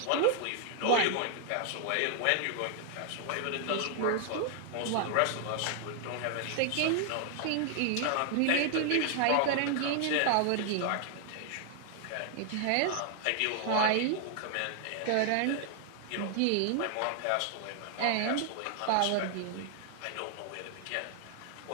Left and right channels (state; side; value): different; both; correlation 0.00